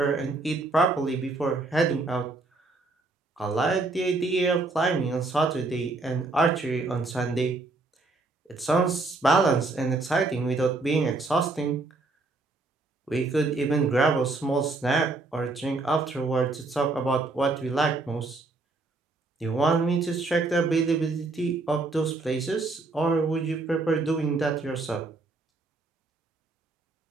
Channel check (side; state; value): left; quieter; 3.4 dB